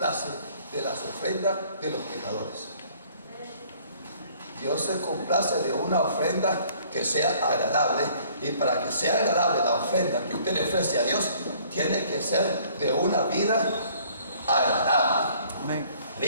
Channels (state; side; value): inverted; both; correlation -0.57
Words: de las ofrendas de los pecadores. Dios se complace de una ofrenda que sea agradable, y para que sea agradable la ofrenda que usted le ofrece a Dios, tiene que ser de una vida agradable,